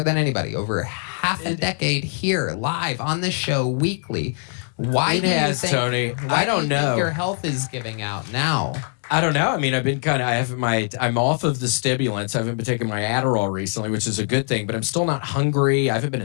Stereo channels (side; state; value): right; silent; 57 dB below the other